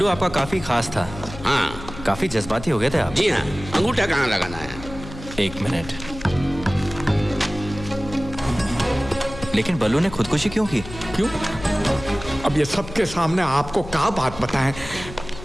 आपका काफी खास था। हाँ, काफी जज्बाती हो गए थे आप। जी हाँ। अंगूठा कहाँ लगाना है? 1 मिनट। लेकिन बल्लू ने खुदकुशी क्यों की? क्यों? अब ये सबके सामने आपको क्या बात बताएं?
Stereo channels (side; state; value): left; noise; hum, 13 dB below the sound